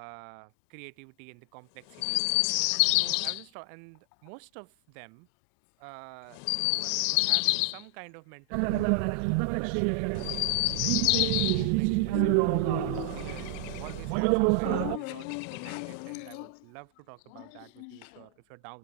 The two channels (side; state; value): both; different; correlation 0.00